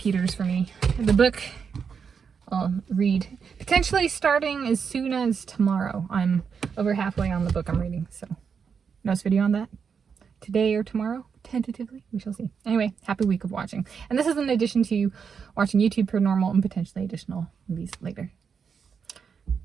for me. The book I'll read potentially starting as soon as tomorrow. I'm over halfway on the book I'm reading, so notes video on that today or tomorrow, tentatively. We shall see. Anyway, happy week of watching. And this is in addition to watching YouTube per normal and potentially additional movies later,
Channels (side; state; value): left; quieter; 6.4 dB